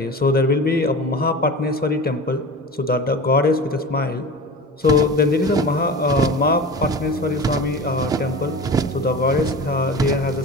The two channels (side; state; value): both; normal; correlation 0.32